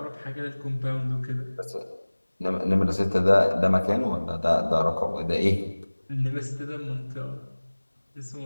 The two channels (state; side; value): inverted; both; correlation -1.00